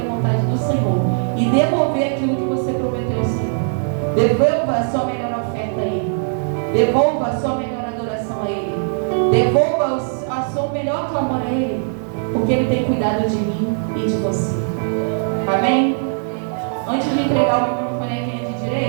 da vontade do Senhor e devolver aquilo que você prometeu ao Senhor. Devolva a sua melhor oferta a Ele. Devolva a sua melhor adoração a Ele. Devolva a sua melhor clamor a Ele, porque Ele tem cuidado de mim e de você. Amém? Antes de entregar o bonequinho de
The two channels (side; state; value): left; silent; digital silence